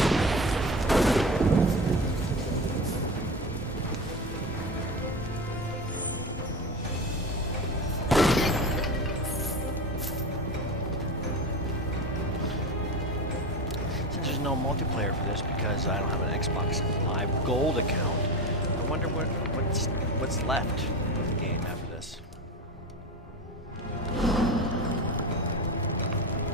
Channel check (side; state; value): both; normal; correlation 0.25